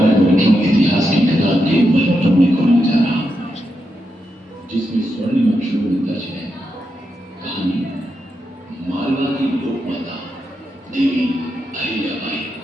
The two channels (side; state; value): both; normal; correlation 0.85